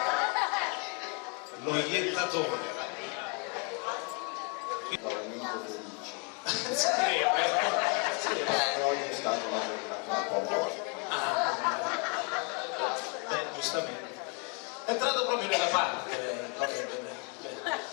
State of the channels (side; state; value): right; quieter; 35.5 dB